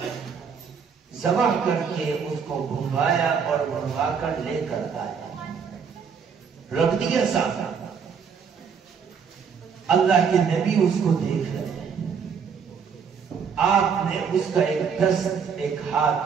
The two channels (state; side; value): quieter; left; 6.5 dB